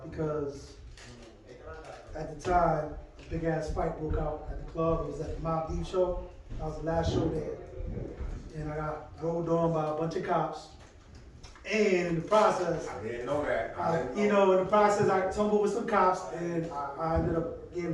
because at the time, a big ass fight broke out at the club. It was at the Mob Deep show. That was the last show there. And I got rolled on by a bunch of cops. And in the process, I didn't know that. in the process, I tumbled with some cops and I ended up getting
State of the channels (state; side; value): identical; both; correlation 1.00